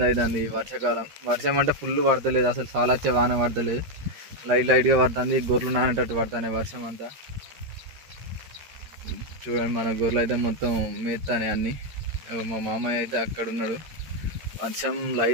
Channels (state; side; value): late; left; 13 ms